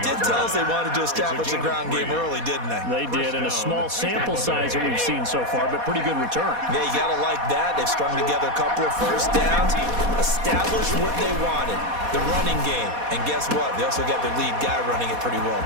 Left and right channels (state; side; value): late; left; 4.2 ms